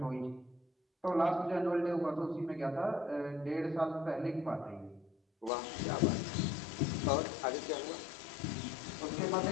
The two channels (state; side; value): drops out; right; at 5.5 s